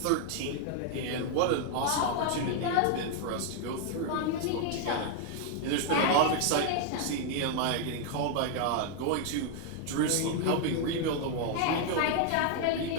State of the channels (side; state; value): both; different; correlation 0.00